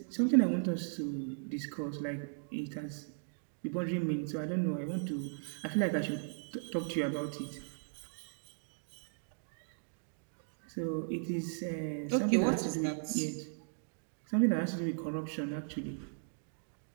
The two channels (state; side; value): silent; left; digital silence